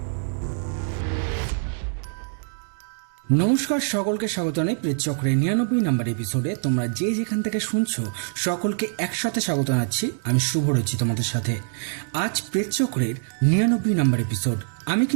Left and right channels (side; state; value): left; silent; digital silence